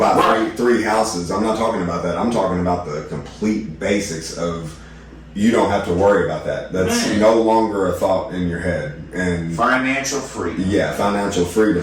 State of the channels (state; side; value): identical; both; correlation 1.00